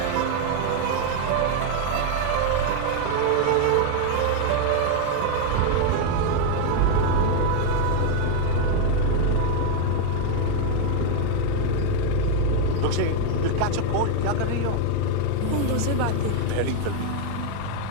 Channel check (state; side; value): different; both; correlation 0.01